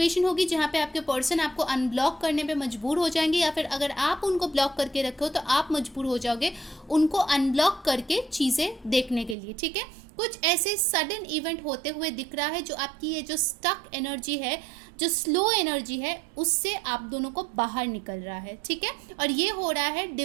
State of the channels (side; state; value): left; drops out; at 9.3 s